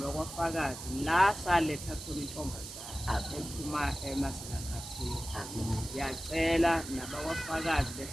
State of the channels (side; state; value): right; noise; hiss, 10 dB below the sound